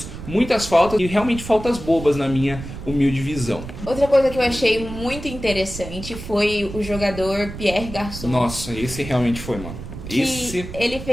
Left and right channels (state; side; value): noise; right; rumble, 11 dB below the sound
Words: muitas faltas e realmente faltas bobas na minha humilde visão. Outra coisa que eu achei muito interessante foi o jogador Pierre Garçon. Nossa, esse realmente foi, mano. Ele